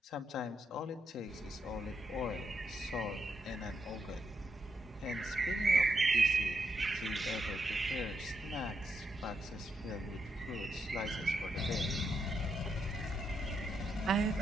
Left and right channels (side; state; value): both; normal; correlation 0.81